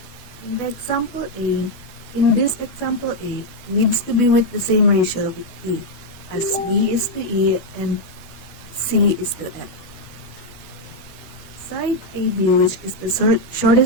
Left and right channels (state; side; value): late; right; 12 ms